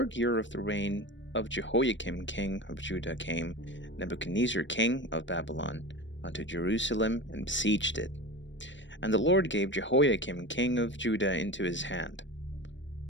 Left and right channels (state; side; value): late; right; 0.54 ms